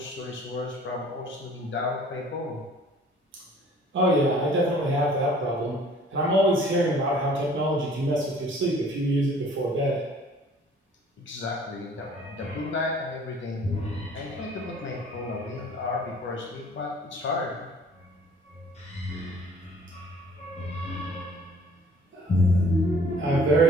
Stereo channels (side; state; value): both; normal; correlation 0.53